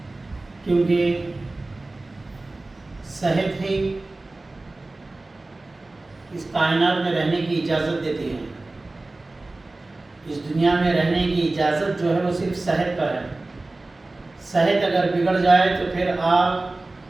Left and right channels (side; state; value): left; quieter; 3.0 dB